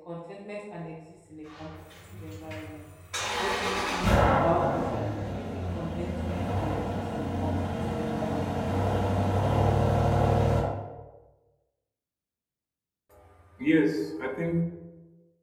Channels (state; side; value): identical; both; correlation 1.00